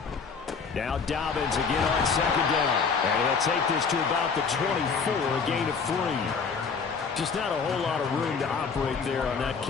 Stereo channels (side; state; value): right; quieter; 5.5 dB